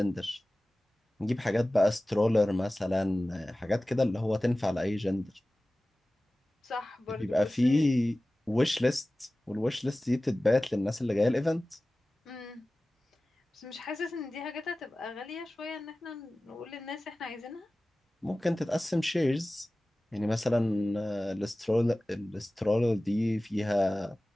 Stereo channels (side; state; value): both; normal; correlation 0.97